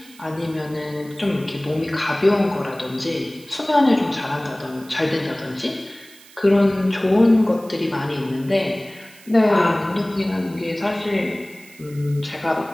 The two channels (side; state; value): right; noise; hiss, 23 dB below the sound